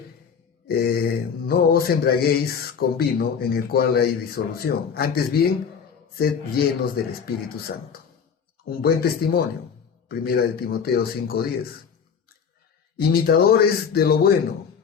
no os embriaguéis con vino en el cual hay disolución, antes bien, sed llenos del Espíritu Santo. Un buen testimonio, primera de Timoteo 5, 10. Imitadores de lo bueno,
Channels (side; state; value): right; quieter; 6.7 dB